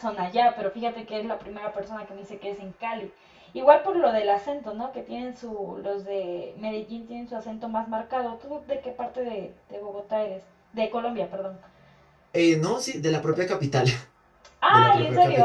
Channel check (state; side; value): identical; both; correlation 1.00